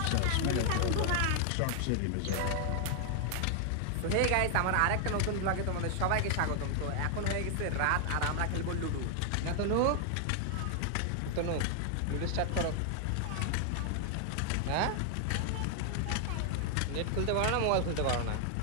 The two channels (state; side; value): different; both; correlation 0.00